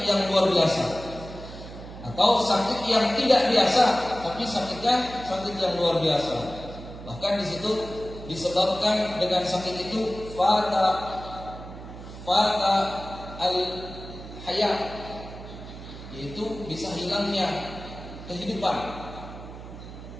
yang luar biasa, atau sakit yang tidak biasa, tapi sakitnya sakit yang luar biasa. Bahkan di situ disebabkan dengan sakit itu fata al-hayat, yaitu bisa hilangnya kehidupan.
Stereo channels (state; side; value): noise; right; hum, 13 dB below the sound